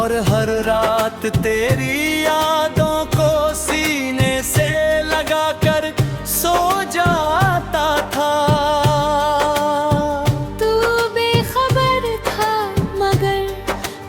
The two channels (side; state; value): both; identical; correlation 1.00